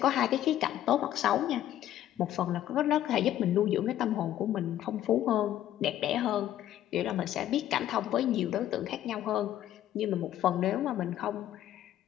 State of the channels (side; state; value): right; quieter; 12.3 dB